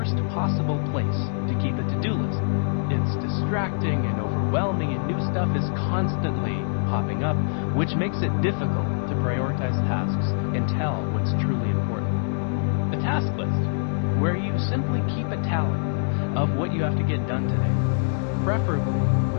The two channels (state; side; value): silent; right; digital silence